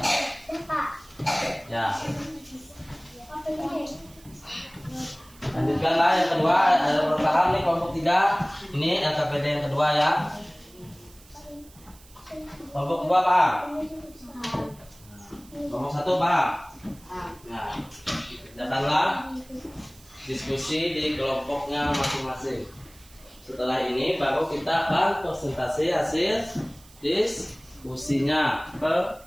Ya. Lanjutkanlah yang kedua, ada bertahan nih kelompok 3. Ini LKPD yang kedua ya. Kelompok 2 paham? Kelompok 1 paham? Nah, kerjakanlah diskusi di kelompoknya masing-masing. Setelah ini baru kita akan presentasi hasil diskusinya ke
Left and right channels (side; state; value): right; noise; hiss, 24 dB below the sound